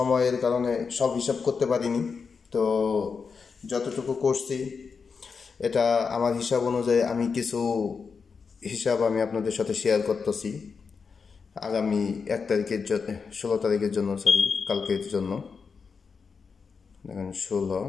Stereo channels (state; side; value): quieter; right; 5.4 dB